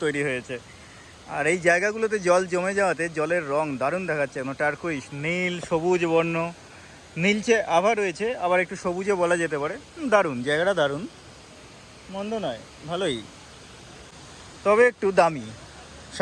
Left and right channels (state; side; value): identical; both; correlation 1.00